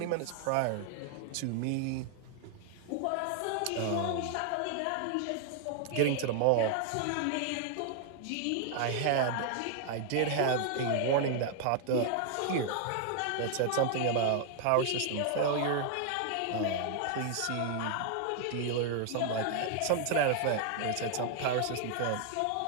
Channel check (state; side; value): different; both; correlation 0.00